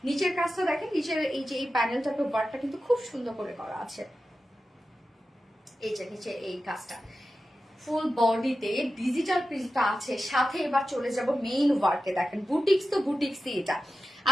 নিচের কাজটা দেখেন, নিচের এই যে এই প্যানেলটাতে ওয়ার্কটা কিন্তু খুব সুন্দর করে করা আছে। এই যে নিচে এই কাজটা ফুল বডিতে ডিজিটাল প্রিন্টটা আছে, সাথে এবার চলে যাব মেইন ওয়ার্কে। দেখেন বুটিক্স তো বুটিক্সই এটা।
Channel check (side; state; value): both; normal; correlation 0.92